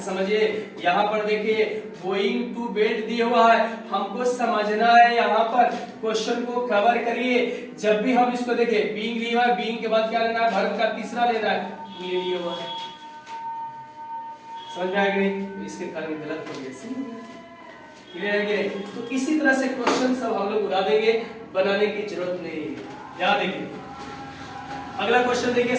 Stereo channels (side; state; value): both; identical; correlation 1.00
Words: समझिए, यहाँ पर देखिए गोइंग टू बेड दिया हुआ है, हमको समझना है यहाँ पर, क्वेश्चन को कवर करिए। जब भी हम इसको देखिए, बीइंग लिया हुआ है, बीइंग के बाद क्या लेना है, वर्ब का तीसरा लेना है, ये लिया हुआ है। समझ में आया कि नहीं, इसके कारण गलत हो गया। क्लियर है कि नहीं। तो इसी तरह से क्वेश्चन सब हम लोग उड़ा देंगे, बनाने की जरूरत नहीं है। यहाँ देखिए अगला क्वेश्चन देखिए